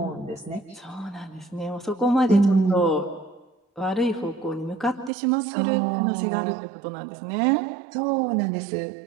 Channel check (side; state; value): left; drops out; at 5.1 s